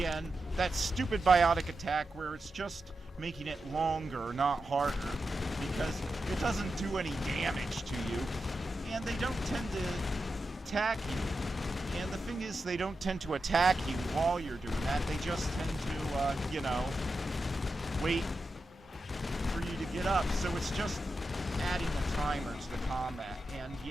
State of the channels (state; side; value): normal; both; correlation 0.89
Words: that stupid biotic attack where it's just making it longer, not harder, because it doesn't do any damage to you, and they don't tend to attack you. And the thing is, they don't tend to attack you while you're doing that. They just tend to, you know, wait for you to get up. So it's just adding a timer to the combat. And